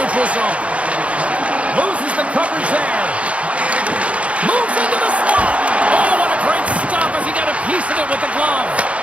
zone. Loses the coverage there. Moves into the slot. Oh, what a great stop as he got a piece of it with the glove.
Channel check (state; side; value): late; left; 0.063 ms